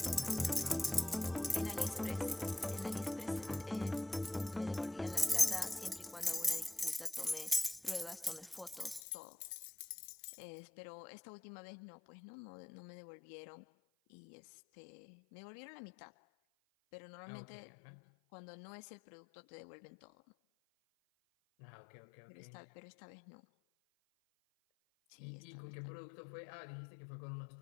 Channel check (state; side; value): drops out; right; at 9.0 s